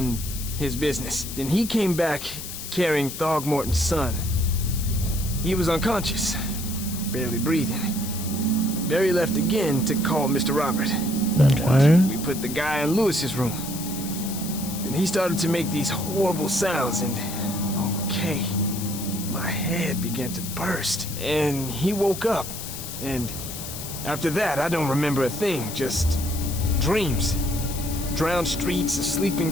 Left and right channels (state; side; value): noise; left; hiss, 9 dB below the sound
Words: his business. Then he came back carrying Throgmorton's son. He was unconscious, barely breathing. Barry left again to call Mr. Robert. Okay. We put the guy in Lewis's room. Then he started to make these horrible sounds and... okay. My head began to burst. And he woke up. And after that, I don't remember a thing. Just dreams. Drowned streets, a sleeping